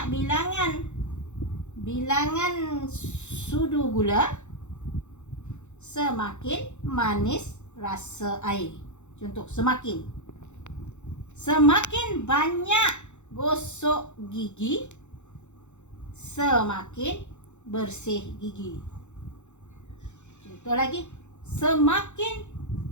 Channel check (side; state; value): right; late; 0.83 ms